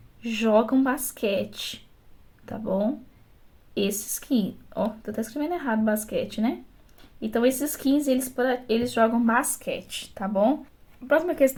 jogam basquete, tá bom? Esses aqui, ó, tô até escrevendo errado basquete, né? Então, esses 15, eles jogam basquete, tá bom? A próxima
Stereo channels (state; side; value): identical; both; correlation 1.00